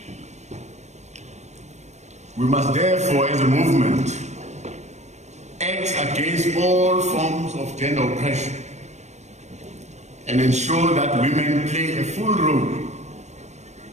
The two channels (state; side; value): late; left; 0.33 ms